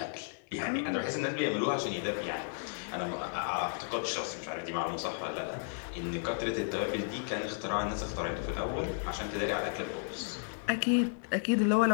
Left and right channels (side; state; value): right; silent; 55 dB below the other